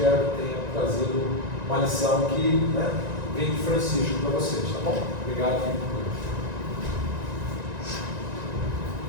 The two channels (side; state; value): left; late; 1.9 ms